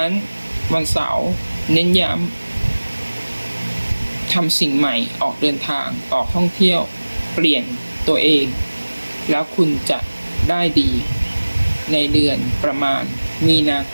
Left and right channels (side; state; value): both; inverted; correlation -1.00